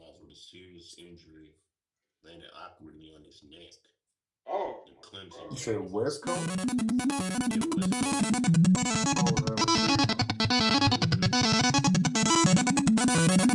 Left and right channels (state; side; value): identical; both; correlation 1.00